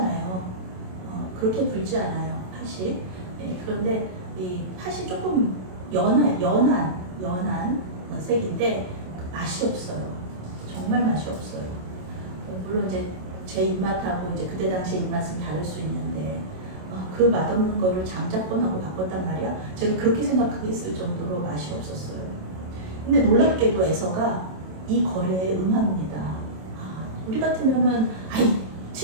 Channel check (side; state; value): left; late; 27 ms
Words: 그렇게 붉지 않아요. 팥이. 네, 그런데 이 팥이 조금 연한 색인데 맛이 없어요. 정말 맛이 없어요. 물론 이제 제 입맛하고 이제 그때 당시 입맛은 다를 수 있는데 그 맛없는 거를 장작권하고 바꿨단 말이야. 제가 그렇게 생각하겠을 정도로 맛이 없었어요. 근데 놀랍게도 에서가 이 거래에 응합니다. 우리 같으면은 아이